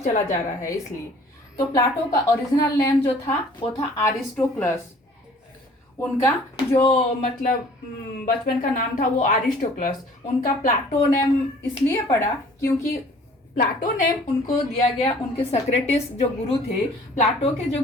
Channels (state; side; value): normal; both; correlation 0.52